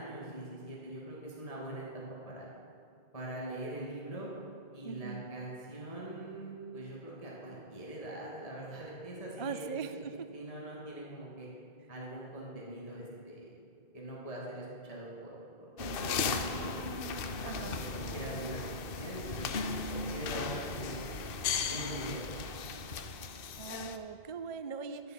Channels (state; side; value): late; right; 2.6 ms